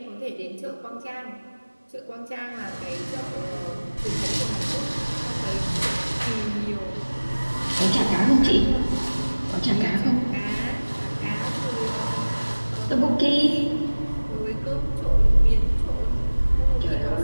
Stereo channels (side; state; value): both; inverted; correlation -1.00